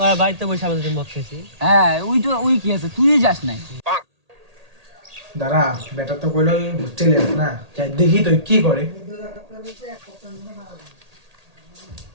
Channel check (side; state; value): left; late; 1.8 ms